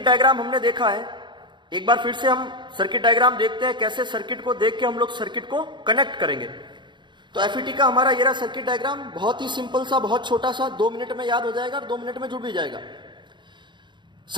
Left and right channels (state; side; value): late; left; 0.22 ms